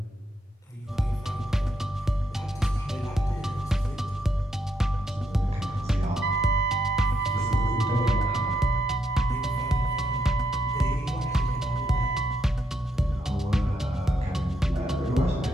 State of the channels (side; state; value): both; normal; correlation 0.79